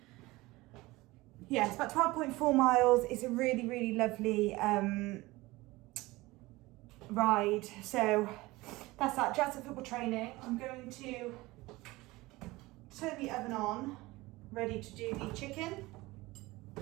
Yeah, it's about 12.4 miles. It's a really, really lovely ride. So that's that. Jazz at football training. I'm going to turn the oven on, ready to do the chicken.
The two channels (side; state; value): left; quieter; 20.5 dB